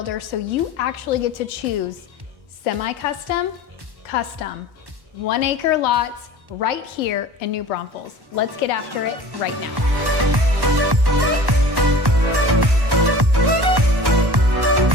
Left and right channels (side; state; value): left; late; 1.1 ms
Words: so you actually get to choose semi-custom, custom, 1-acre lots right here in New Braunfels. Let's get after it right now.